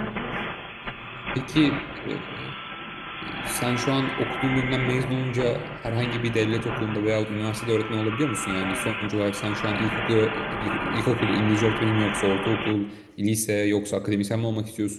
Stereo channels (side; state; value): both; identical; correlation 1.00